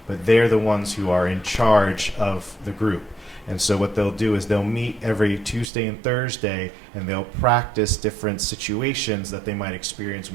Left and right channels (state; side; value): drops out; left; at 5.7 s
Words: but they're the ones who are in charge of the group. And so what they'll do is they'll meet every Tuesday and Thursday, and they'll practice different situations that they might experience